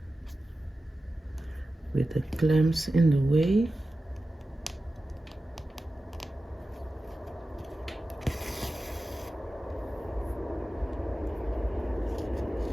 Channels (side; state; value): both; normal; correlation 0.94